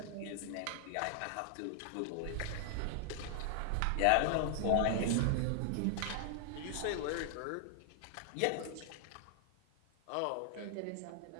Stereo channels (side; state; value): both; different; correlation 0.00